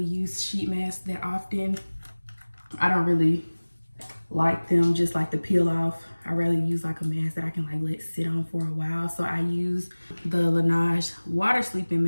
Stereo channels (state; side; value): inverted; both; correlation -1.00